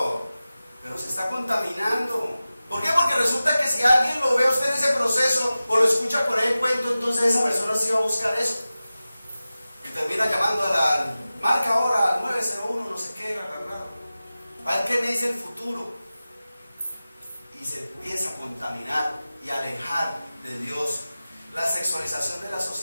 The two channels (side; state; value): both; inverted; correlation -0.95